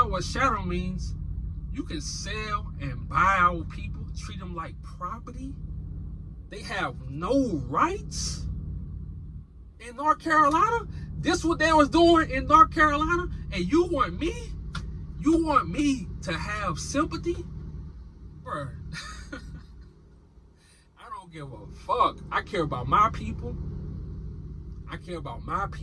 what chattel means, You can sell and buy our people, treat them like property. They have no rights in North Carolina. This what they was doing in North Carolina, and you want me to have sympathy? Bruh. I don't give a fuck. I care about my people. I care about my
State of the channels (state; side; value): identical; both; correlation 1.00